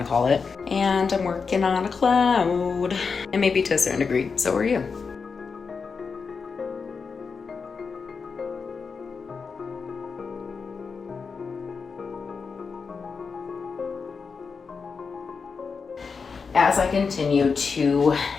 to call it. And I'm working on a cloud. And maybe to a certain degree, so are you. As I continue to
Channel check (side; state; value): right; quieter; 5.2 dB